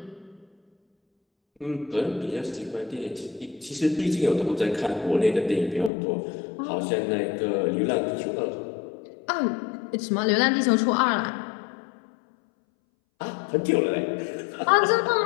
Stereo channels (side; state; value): right; drops out; at 5.9 s